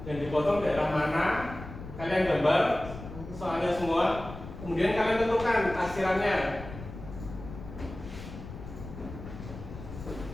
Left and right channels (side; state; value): left; noise; rumble, 12 dB below the sound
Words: yang dipotong daerah mana, kalian gambar soalnya semua. Kemudian kalian tentukan arsirannya.